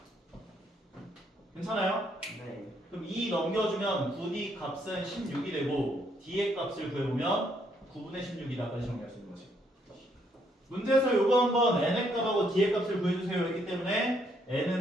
괜찮아요? 네. 그럼 2 넘겨주면 9D 값은 16이 되고 D의 값을 구해보면 9분의 16이다까지 정리할 수 있는 거지. 문제에서 요거 한번 N의 값하고 D의 값을 구해주세요 했기 때문에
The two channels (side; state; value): both; normal; correlation 0.72